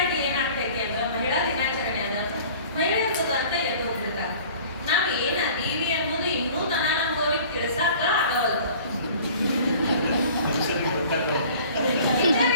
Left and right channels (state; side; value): inverted; both; correlation -0.47